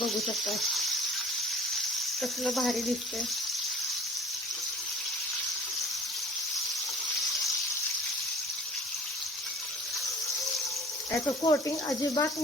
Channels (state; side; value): normal; both; correlation 0.47